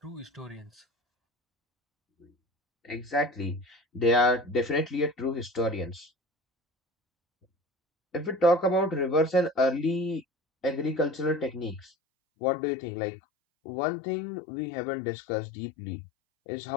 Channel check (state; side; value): drops out; right; at 11.9 s